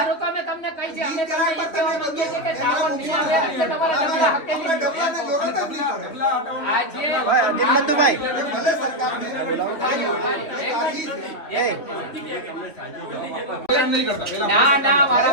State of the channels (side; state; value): right; late; 3.1 ms